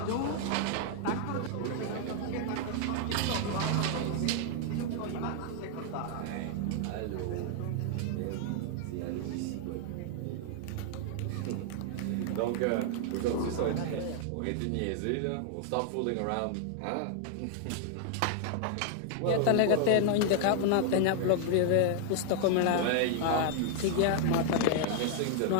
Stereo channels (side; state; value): both; different; correlation 0.00